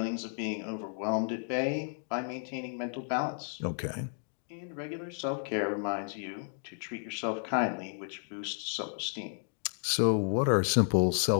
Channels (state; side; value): silent; right; 56 dB below the other